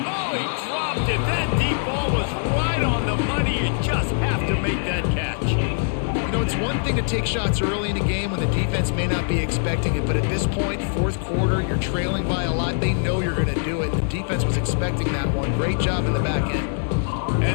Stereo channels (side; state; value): right; silent; digital silence